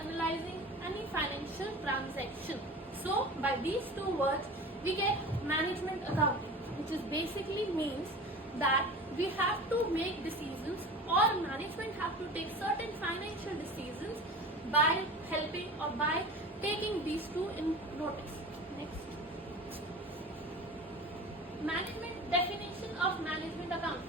analyzing any financial transaction. So by these two words we get management accounting, which is basically means that we have to make decisions, or management have to take certain financial decisions by helping or by taking these two in notice. Next. Management definition of management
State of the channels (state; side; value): normal; both; correlation 0.35